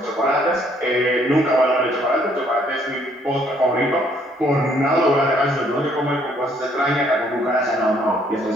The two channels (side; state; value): both; normal; correlation 0.65